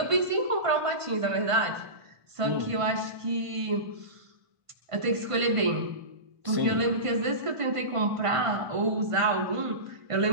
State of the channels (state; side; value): late; left; 1.5 ms